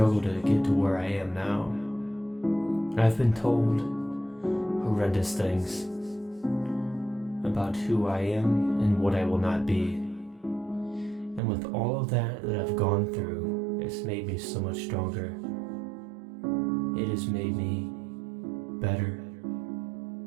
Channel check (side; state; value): left; drops out; at 11.4 s